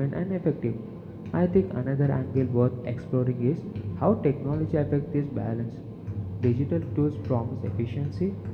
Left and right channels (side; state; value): both; identical; correlation 1.00